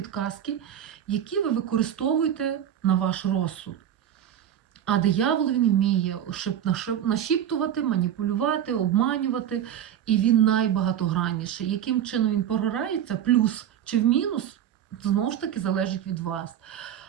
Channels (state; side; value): quieter; left; 10.1 dB